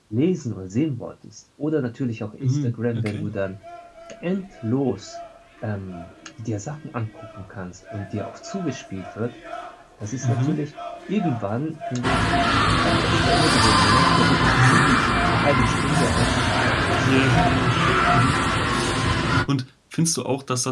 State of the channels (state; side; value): identical; both; correlation 1.00